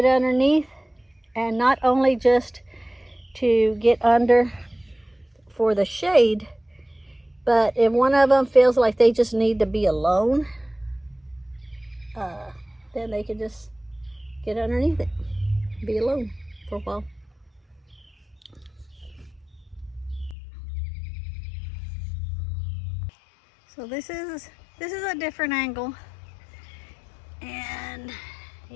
underneath. And not only just to get under for the shade, but if one of them feels like they just need to be alone, then they can just get underneath it, be alone for a while. So this is a different angle, and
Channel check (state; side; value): drops out; right; at 20.4 s